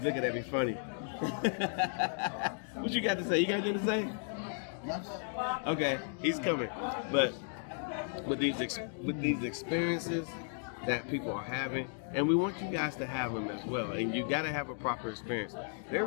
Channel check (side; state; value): right; silent; 55 dB below the other